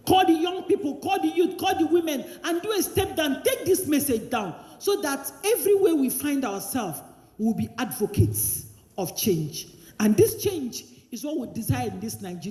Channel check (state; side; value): identical; both; correlation 1.00